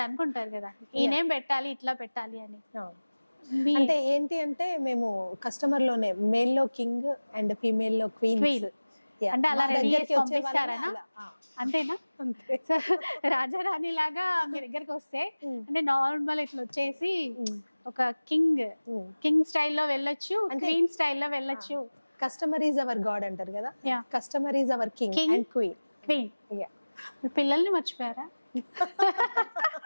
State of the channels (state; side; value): inverted; both; correlation -1.00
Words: అనుకుంటారు కదా ఈ నేమ్ పెట్టాలి, ఇట్లా పెట్టాలి అని. అంటే ఏంటి అంటే మేము కస్టమర్ లోనే మేల్ లో కింగ్ అండ్ ఫీమేల్ లో క్వీన్ అంటే అలా రెడీ చేసి పంపిస్తారా? అంతేనా? రాజారాణి లాగా మీ దగ్గరికి వస్తే అంటే నార్మల్ ఇట్లా వచ్చేసి ఒక కింగ్ స్టైల్లో వెళ్ళొచ్చు, క్వీన్ స్టైల్లో వెళ్ళొచ్చు. కస్టమర్ ఈజ్ అవర్ గాడ్ అంటారు కదా, customer is our king and queen. పిల్లల్ని మర్చిపోయారా?